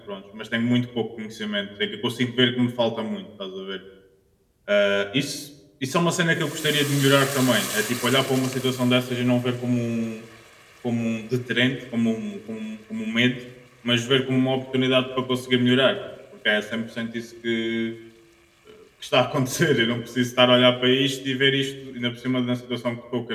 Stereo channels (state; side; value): identical; both; correlation 1.00